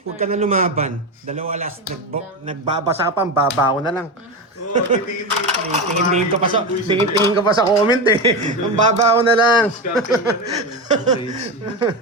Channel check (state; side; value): normal; both; correlation 0.18